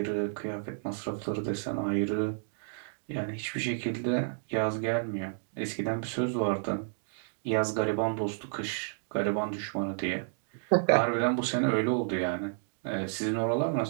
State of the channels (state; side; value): silent; left; digital silence